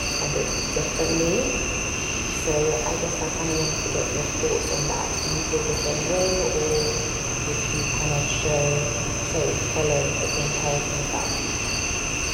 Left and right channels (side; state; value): both; identical; correlation 1.00